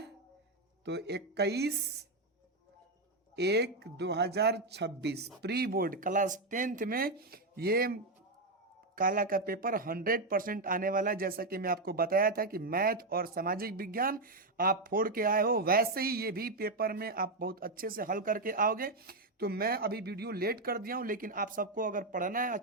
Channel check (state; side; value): quieter; left; 3.0 dB